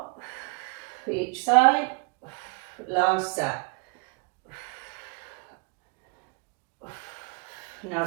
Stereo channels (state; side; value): quieter; left; 32.6 dB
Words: for each side. Last set. Now